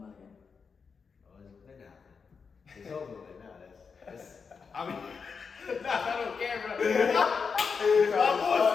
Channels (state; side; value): quieter; right; 5.6 dB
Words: out again? Oh, it's been happening. It's over with now. That's I mean, not on camera. My